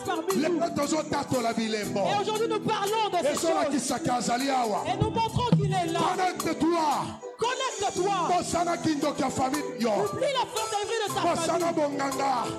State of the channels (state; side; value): identical; both; correlation 1.00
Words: parmi nous. Et aujourd'hui nous parlons de ces choses. Et nous montrons qu'il est là. Connecte-toi. Oublie la fantasierie de ta famille.